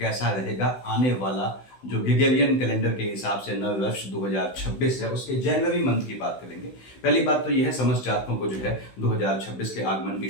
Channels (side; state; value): right; late; 16 ms